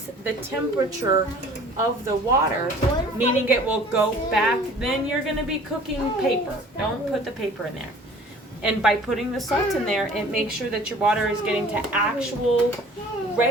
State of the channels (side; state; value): both; normal; correlation 0.49